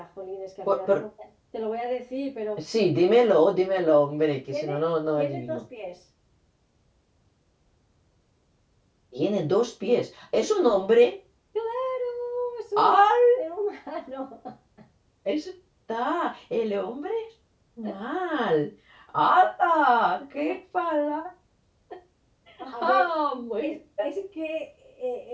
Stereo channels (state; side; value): identical; both; correlation 1.00